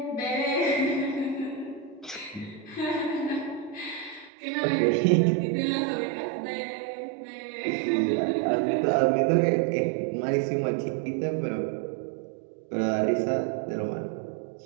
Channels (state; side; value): drops out; left; at 4.3 s